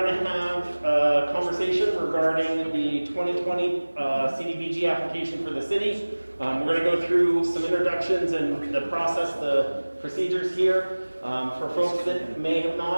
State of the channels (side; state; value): both; inverted; correlation -1.00